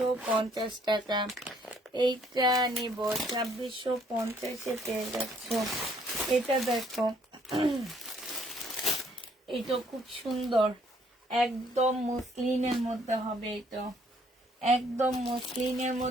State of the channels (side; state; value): both; normal; correlation 0.65